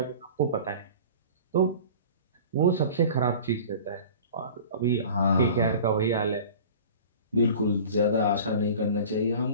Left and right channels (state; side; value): inverted; both; correlation -0.41